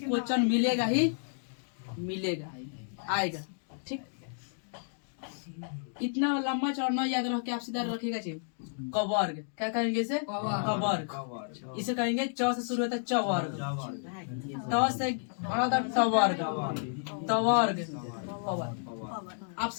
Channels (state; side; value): silent; right; digital silence